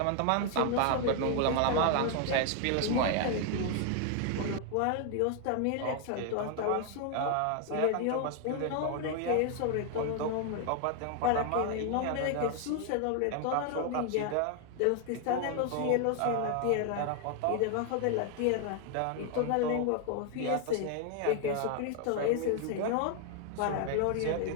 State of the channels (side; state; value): both; different; correlation 0.00